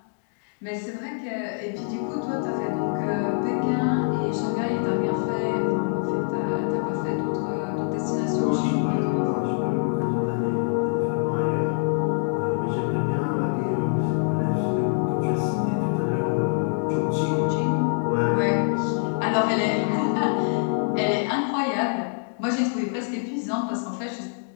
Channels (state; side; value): silent; right; 62 dB below the other